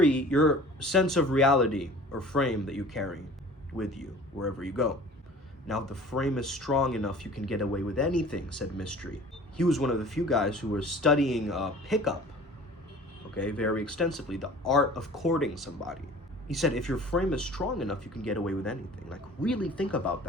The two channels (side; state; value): both; normal; correlation 0.45